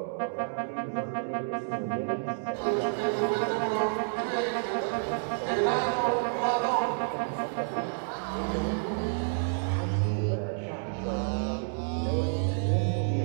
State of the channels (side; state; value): left; silent; digital silence